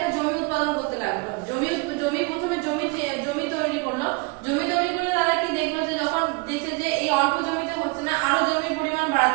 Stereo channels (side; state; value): left; quieter; 28.5 dB